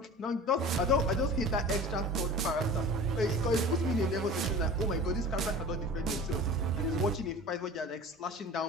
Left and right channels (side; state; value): both; normal; correlation 0.39